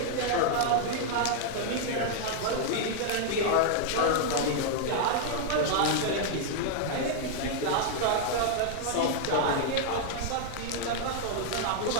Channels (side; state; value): both; different; correlation -0.01